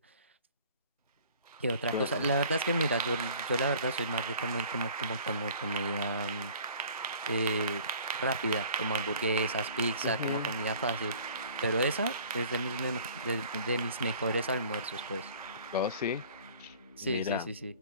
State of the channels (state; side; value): inverted; both; correlation -0.49